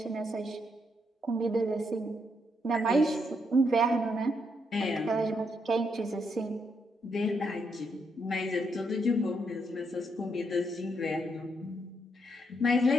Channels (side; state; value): both; normal; correlation 0.77